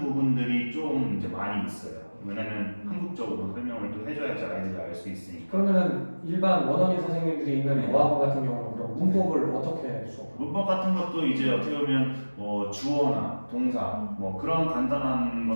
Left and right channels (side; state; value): both; inverted; correlation -1.00